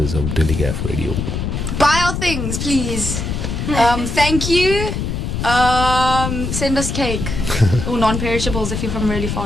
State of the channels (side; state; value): left; noise; rumble, 3 dB below the sound